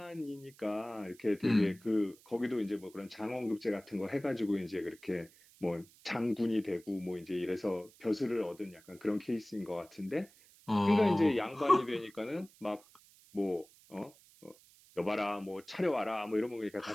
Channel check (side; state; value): right; noise; hiss, 26 dB below the sound